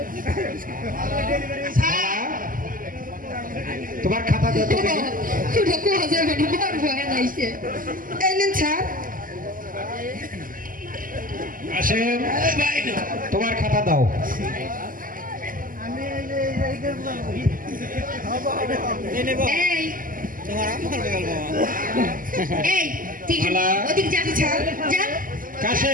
তোমার খাতা দাও তো দেখি। খুঁড়ো কোয়া যাবে না মারবো এনাইছে এই নিন স্যার আসেন তোমার খাতা দাও এই এই ঠিক মালা। ওদিক যা স্যার যা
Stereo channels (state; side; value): late; left; 0.41 ms